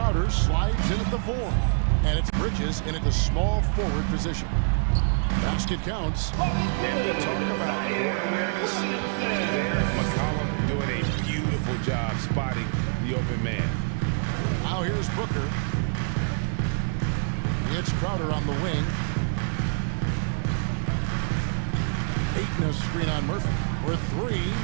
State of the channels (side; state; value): left; silent; digital silence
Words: slides in at the 4. And it's Bridges in at the small forward position. Basket counts. And we talk about court awareness. There, McCollum doing a beautiful job spotting the open man. Now here's Booker. It's Crowder on the wing. Ayton a screen on Murphy. For 3,